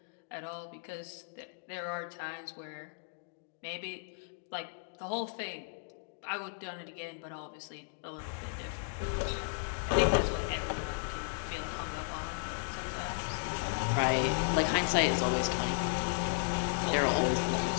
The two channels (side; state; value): right; silent; digital silence